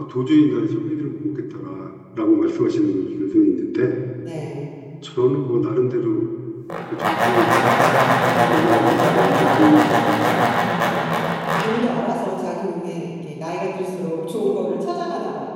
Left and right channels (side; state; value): both; identical; correlation 1.00